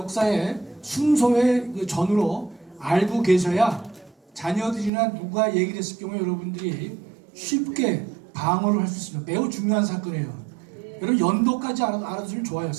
순서의 그 전으로 알고 계셔야 자녀들이나 누가 얘기를 했을 경우에 여러분들이 쉽게 방어를 할 수 있습니다. 매우 중요한 사건이에요. 여러분 연도까지 알아두시면 좋아요.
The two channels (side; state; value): left; drops out; at 4.9 s